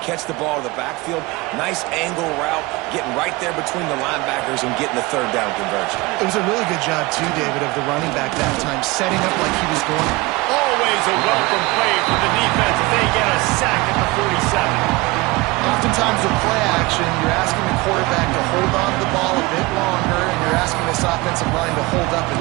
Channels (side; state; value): left; quieter; 22.8 dB